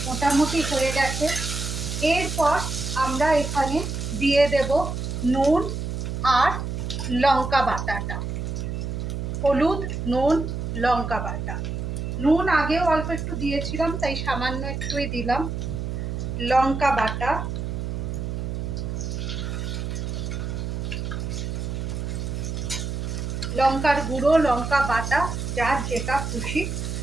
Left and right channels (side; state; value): right; noise; hum, 4 dB below the sound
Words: মোটামুটি হয়ে গেছে। এরপর আমরা এখানে দিয়ে দেব নুন আর লঙ্কা বাটাটা। হলুদ, নুন, লঙ্কা বাটা। নুন আগেও অল্প একটু দিয়েছিলাম, তাই সামান্য একটুই দিলাম। লঙ্কা বাটা, লঙ্কার গুঁড়ো, লঙ্কা বাটা, যার যেটা খুশি